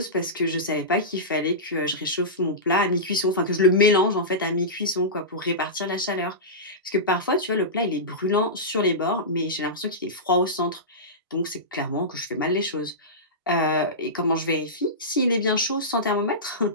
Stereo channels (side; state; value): both; normal; correlation -0.17